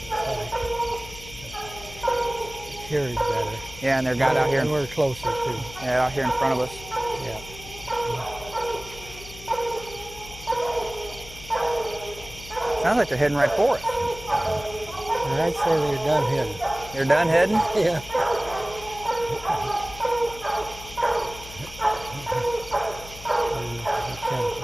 Here is better. Yeah, and they're got out here. And we're closer too. Yeah, out here in front of us. Yeah. Sounds like they're heading right for us. And I'd say they're done heading. You're done heading? Yeah.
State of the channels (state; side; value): noise; left; hum, 16 dB below the sound